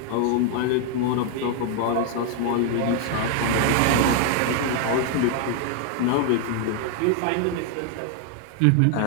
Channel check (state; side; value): different; both; correlation 0.00